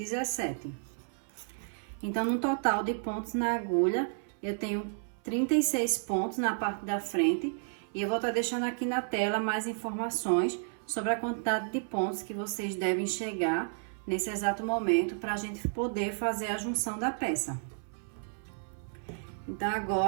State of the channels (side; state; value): left; silent; 56 dB below the other